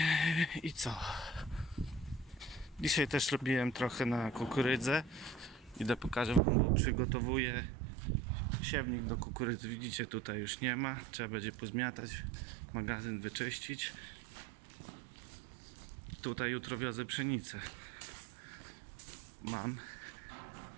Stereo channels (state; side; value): drops out; left; at 6.4 s